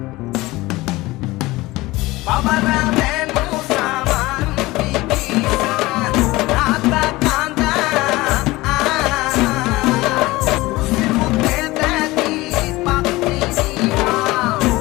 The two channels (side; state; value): right; quieter; 20.0 dB